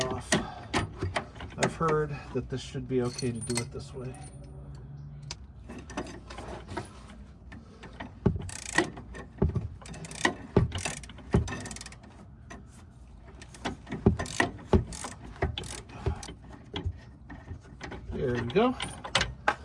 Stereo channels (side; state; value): both; identical; correlation 1.00